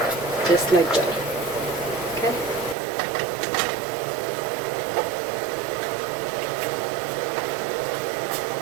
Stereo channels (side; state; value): left; drops out; at 2.8 s